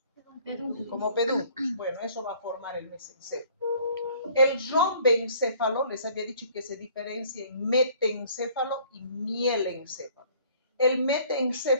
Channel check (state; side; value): inverted; both; correlation -0.56